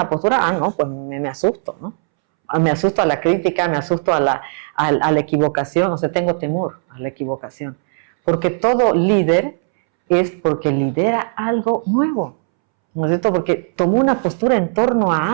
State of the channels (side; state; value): left; silent; 66 dB below the other